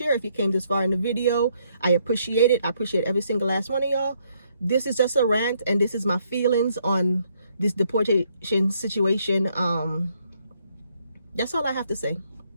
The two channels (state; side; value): inverted; both; correlation -0.71